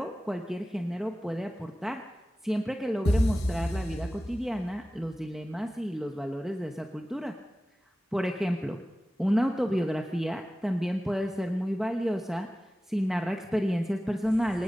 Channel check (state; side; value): normal; both; correlation 0.96